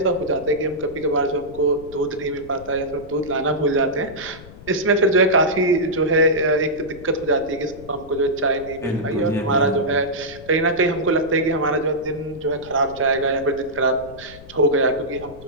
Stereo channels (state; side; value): noise; left; rumble, 18 dB below the sound